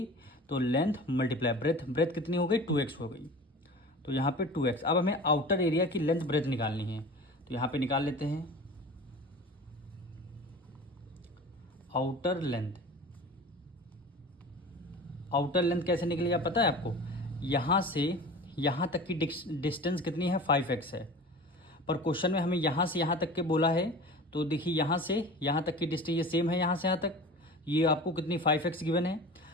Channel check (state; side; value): normal; both; correlation 0.37